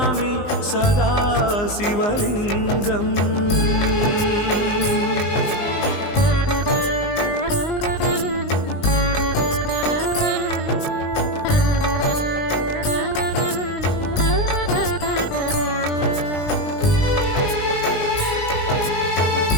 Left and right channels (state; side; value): late; right; 19 ms